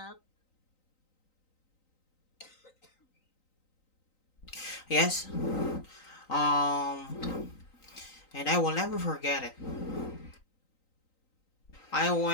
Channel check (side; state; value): right; late; 3.9 ms